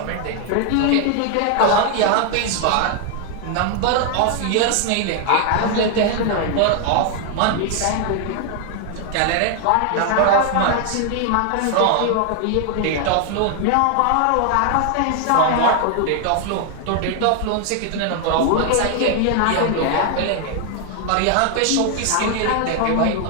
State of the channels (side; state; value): both; different; correlation 0.00